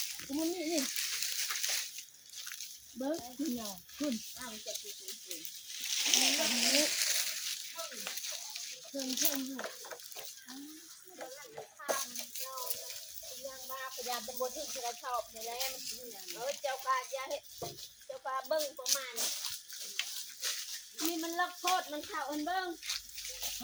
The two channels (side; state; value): both; identical; correlation 1.00